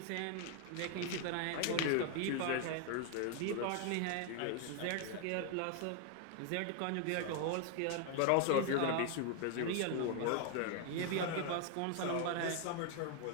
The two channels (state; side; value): different; both; correlation 0.00